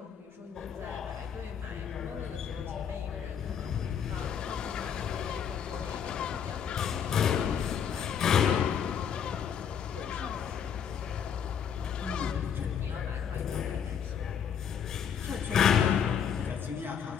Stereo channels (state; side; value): quieter; right; 7.9 dB